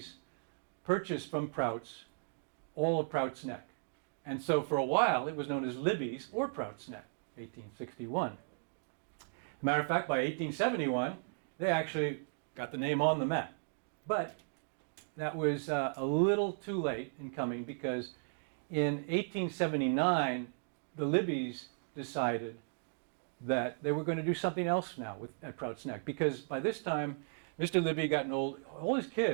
purchased from Prouts all of Prouts Neck. And so for a while, it was known as Libby's or Prouts Neck, 1861. As a matter of fact, by 1871, they actually got the name on the map. But that was a little too late in coming, because in 1879, the Libbys decided that they were going to do something else now at Prouts Neck, because by this time, Mr. Libby had gotten old. All his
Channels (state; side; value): silent; left; digital silence